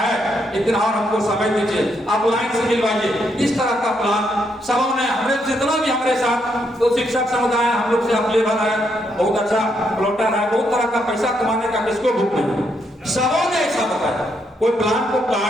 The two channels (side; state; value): both; normal; correlation 0.77